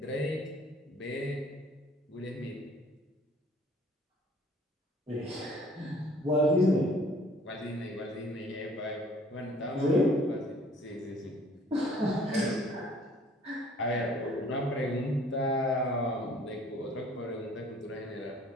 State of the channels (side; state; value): both; normal; correlation 0.56